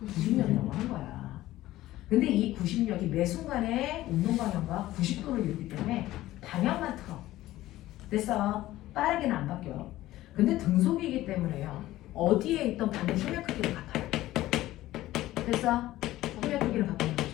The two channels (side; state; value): right; quieter; 15.7 dB